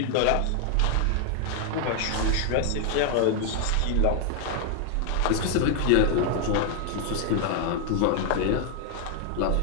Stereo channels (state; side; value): different; both; correlation 0.00